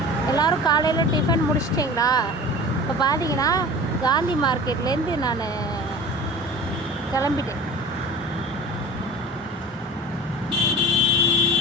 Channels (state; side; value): normal; both; correlation 0.38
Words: எல்லோரும் காலையில் டிஃபன் முடிச்சிட்டிங்களா? இப்போ பார்த்தீங்கன்னா காந்தி மார்க்கெட்லேருந்து நான் கிளம்பிட்டேன்.